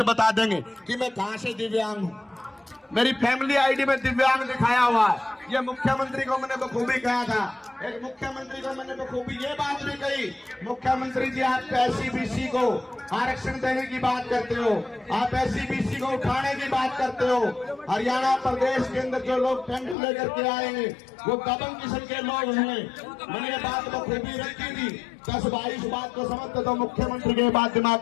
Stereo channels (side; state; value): right; drops out; at 20.0 s